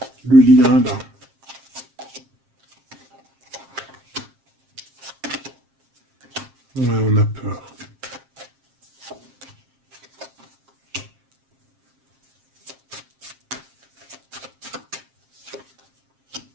Le lien, là. Ouais, on a peur.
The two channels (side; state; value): left; late; 7.5 ms